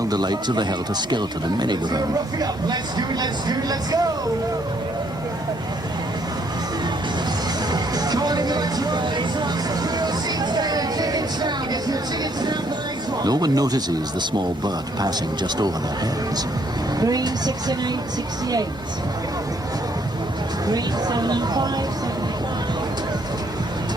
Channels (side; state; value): both; normal; correlation 0.68